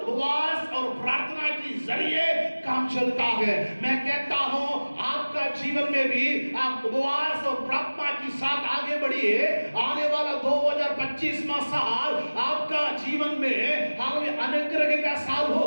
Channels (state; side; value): inverted; both; correlation -1.00